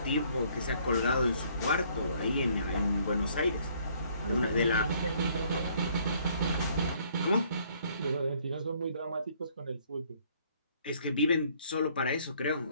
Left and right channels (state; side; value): inverted; both; correlation -0.63